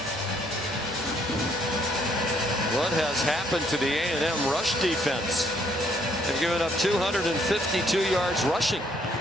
What has happened to the A&M rush defense? They've given up 252 yards rushing.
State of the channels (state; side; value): normal; both; correlation 0.68